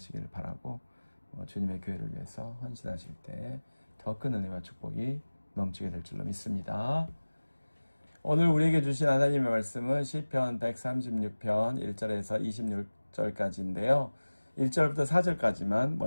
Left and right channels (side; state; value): both; inverted; correlation -1.00